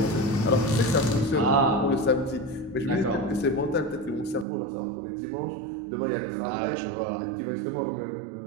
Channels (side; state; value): left; drops out; at 4.5 s